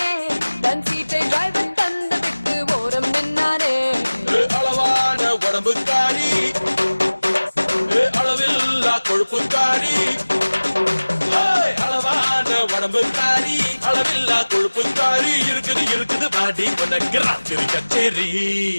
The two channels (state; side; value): inverted; both; correlation -1.00